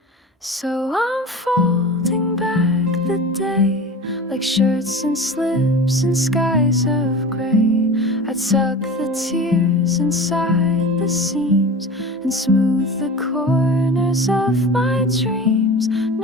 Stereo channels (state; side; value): normal; both; correlation 0.34